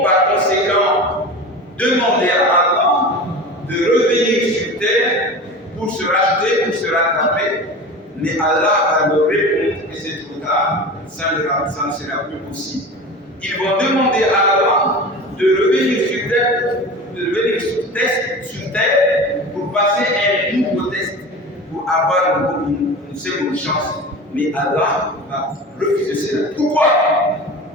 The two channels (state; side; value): normal; both; correlation 0.32